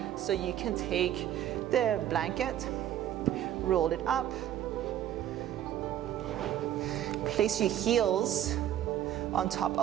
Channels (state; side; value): quieter; left; 11.5 dB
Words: So you can take the blanket, roll it up, place your heels on top